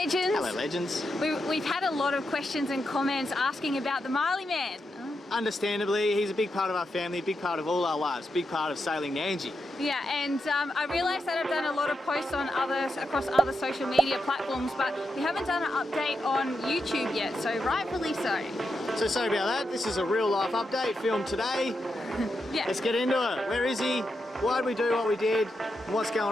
legends. Hello, legends. We've had a lot of questions and comments asking about the Marley man. Understandably, he's a big part of our family, a big part of all our lives, big part of sailing Nandji. Yeah, and I realised that I've done a lot of posts on across other social media platforms, but we haven't done an update on YouTube yet, so rightfully so. So sorry about that. This is a real life update filmed today. Yeah. Let's get into it. Where is he? Why did we do what we did? And what's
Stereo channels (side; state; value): both; normal; correlation 0.86